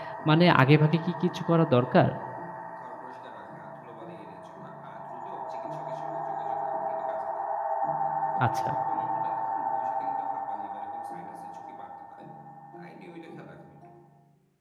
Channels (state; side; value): identical; both; correlation 1.00